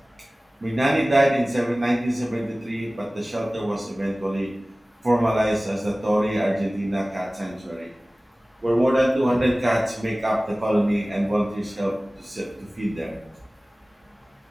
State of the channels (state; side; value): normal; both; correlation 0.98